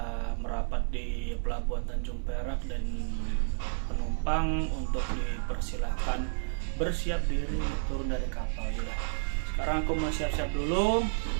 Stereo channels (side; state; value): left; silent; digital silence